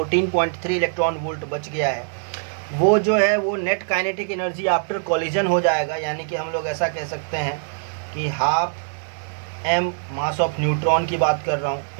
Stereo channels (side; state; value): left; silent; 60 dB below the other